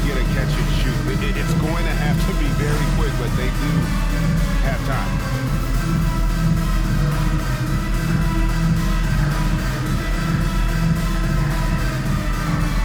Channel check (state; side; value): identical; both; correlation 1.00